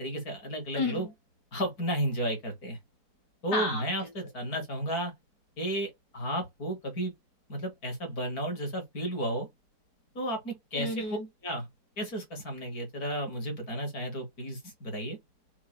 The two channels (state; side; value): late; right; 4.5 ms